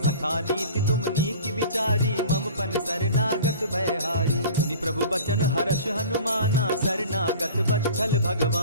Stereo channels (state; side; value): inverted; both; correlation -0.42